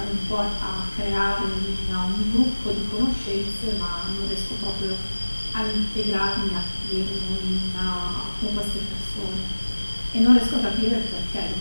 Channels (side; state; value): both; inverted; correlation -1.00